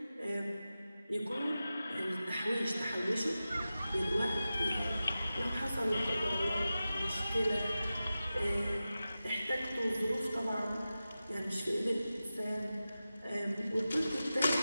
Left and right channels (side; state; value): both; inverted; correlation -0.94